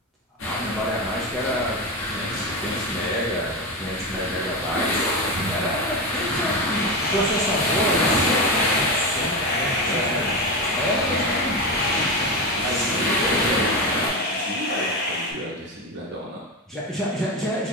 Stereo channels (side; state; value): both; normal; correlation 0.17